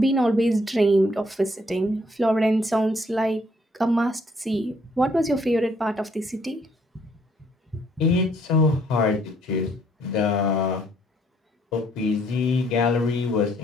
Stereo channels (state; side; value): normal; both; correlation 0.67